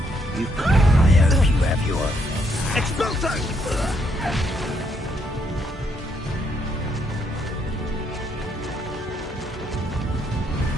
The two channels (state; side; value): normal; both; correlation 0.73